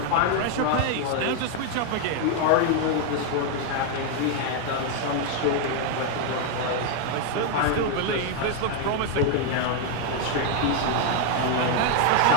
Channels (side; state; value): both; different; correlation 0.01